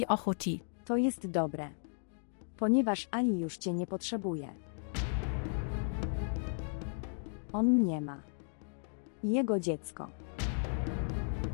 ochoti. To jest dobre. Ponieważ Ali już cię nie potrzebuje. On mnie ma. I jego dziecko.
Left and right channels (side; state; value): right; silent; digital silence